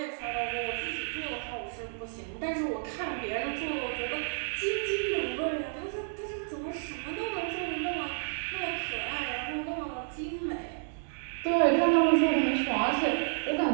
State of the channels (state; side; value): silent; left; 57 dB below the other